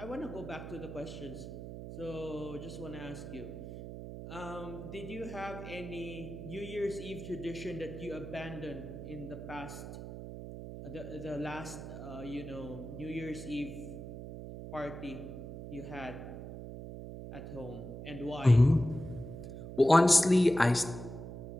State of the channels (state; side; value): noise; right; hum, 10 dB below the sound